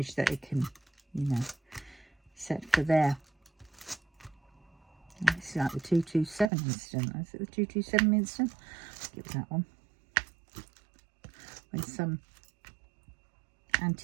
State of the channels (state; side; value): drops out; left; at 6.5 s